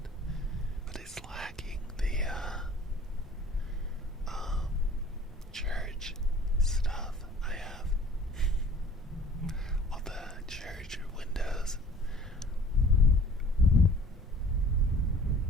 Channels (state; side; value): normal; both; correlation 0.51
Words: But it's lacking the church stuff I have. All the church windows.